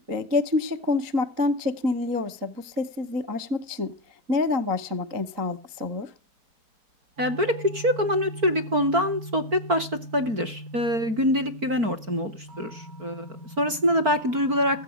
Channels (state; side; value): late; left; 4.5 ms